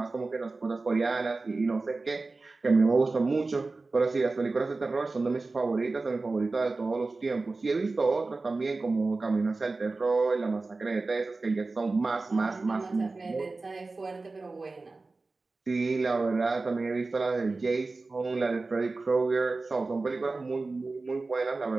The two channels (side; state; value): left; quieter; 3.6 dB